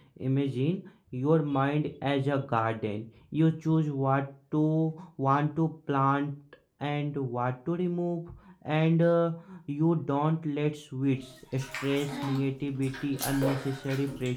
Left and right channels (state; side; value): identical; both; correlation 1.00